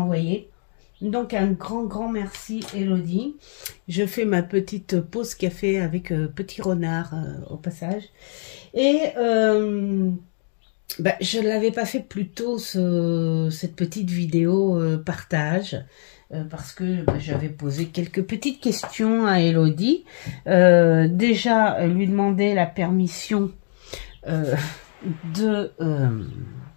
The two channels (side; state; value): right; silent; digital silence